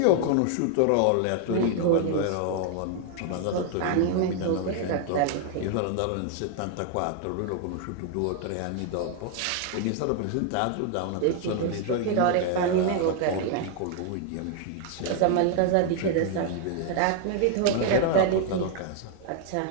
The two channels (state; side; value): different; both; correlation 0.00